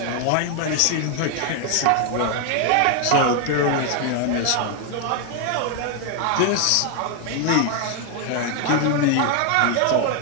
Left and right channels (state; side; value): different; both; correlation 0.01